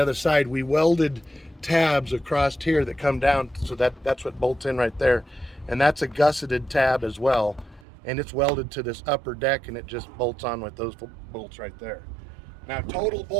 side we welded tabs across here that come down, so that's what bolts in right there, and that's a gusseted tab as well, and it's welded to this upper deck, and it just bolts on with those bolts right there. Now total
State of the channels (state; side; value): drops out; left; at 7.9 s